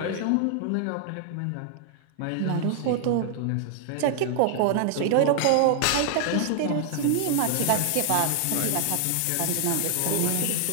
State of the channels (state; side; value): different; both; correlation 0.00